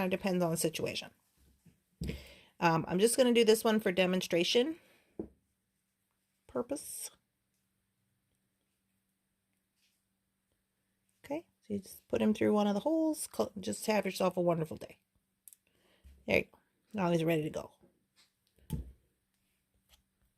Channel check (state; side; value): identical; both; correlation 1.00